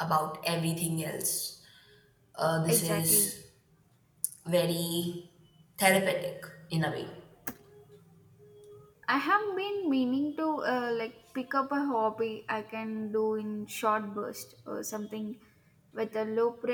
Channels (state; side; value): identical; both; correlation 1.00